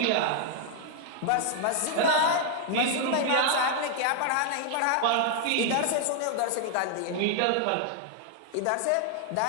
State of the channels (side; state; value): both; different; correlation 0.00